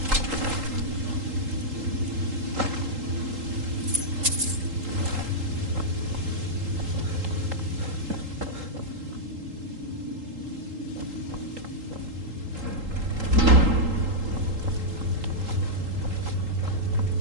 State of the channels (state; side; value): late; left; 3.8 ms